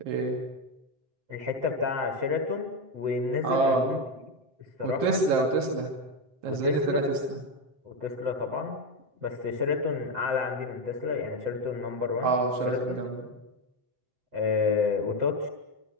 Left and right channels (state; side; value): late; left; 7.7 ms